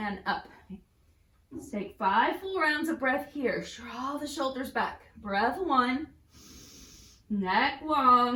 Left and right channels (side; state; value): both; identical; correlation 1.00